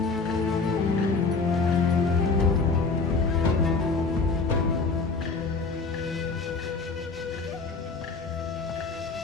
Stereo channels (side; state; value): right; quieter; 4.3 dB